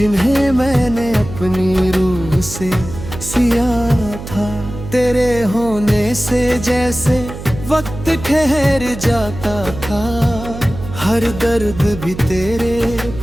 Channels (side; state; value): right; noise; hum, 11 dB below the sound